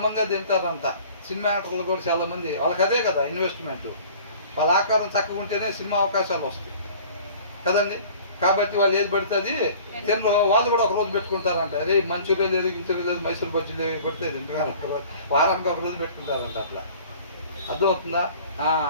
తింటారంట. సినిమా యాక్టర్లు కూడా చాలా మంది వాళ్ళకి అదే కదా ఇన్వెస్ట్మెంట్. వాళ్ళ ఆకారం చక్కగా ఉంటేనే సినిమా అవకాశాలు వస్తాయి కదండి. కాబట్టి వాళ్ళు ఏది పడుతుంది తినరు. వాళ్ళు కూడా ఒక రోజు పెట్టుకుంటారంట. అరే మంచూరియా లేదు, గించూరియా లేదు, మైసూర్ బజ్జీ లేదు, పెడితే వారానికి ఒక రోజు పెట్టుకుంటారంట. అట్లా అర్థమవుతుందా?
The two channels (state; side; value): inverted; both; correlation -0.48